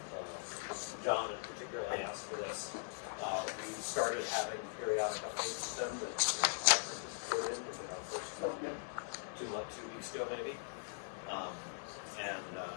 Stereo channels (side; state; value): right; silent; digital silence